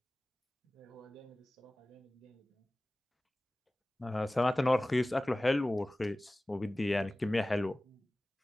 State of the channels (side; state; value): both; normal; correlation 0.98